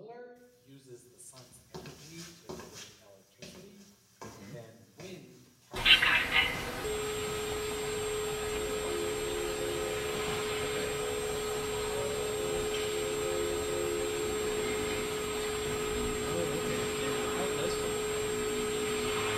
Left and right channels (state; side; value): identical; both; correlation 1.00